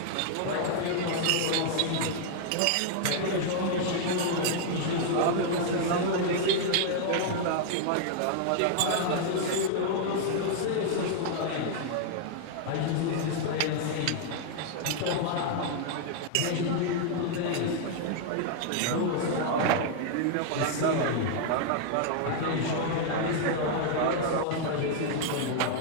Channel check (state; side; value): different; both; correlation -0.01